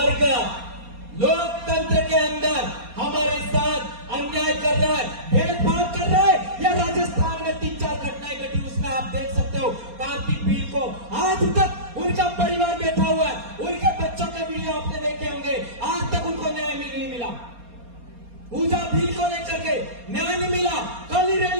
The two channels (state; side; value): late; left; 4.2 ms